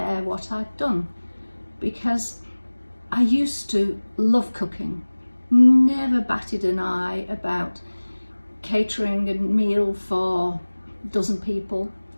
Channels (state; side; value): inverted; both; correlation -1.00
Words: what I'd done, because I used to love cooking, never batted an eye about catering a meal for a dozen people.